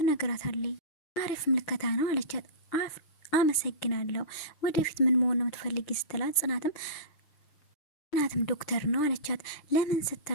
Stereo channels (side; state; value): right; late; 6.6 ms